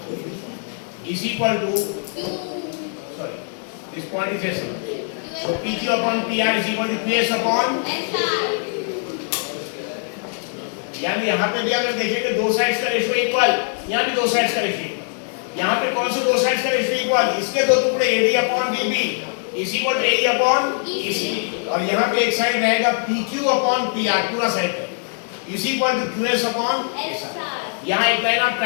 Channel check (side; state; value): right; silent; 58 dB below the other